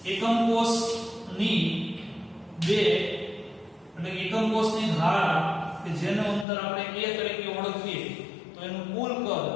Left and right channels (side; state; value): right; drops out; at 6.5 s